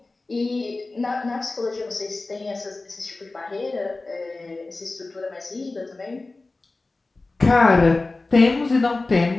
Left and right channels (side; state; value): right; quieter; 3.3 dB